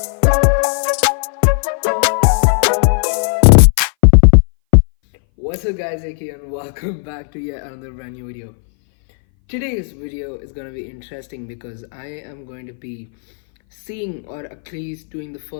What's up guys, AK, and welcome back to yet another brand new video. Today's video is going to be interesting because I am going to be seeing, or at least doing, the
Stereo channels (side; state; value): right; silent; 62 dB below the other